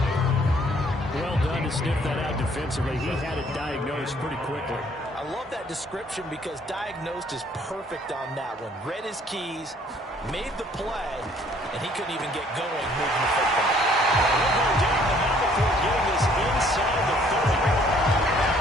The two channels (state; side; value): normal; both; correlation 0.61